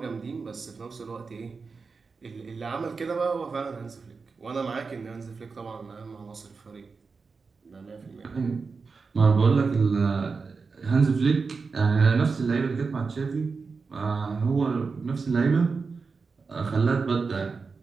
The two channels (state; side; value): quieter; left; 4.7 dB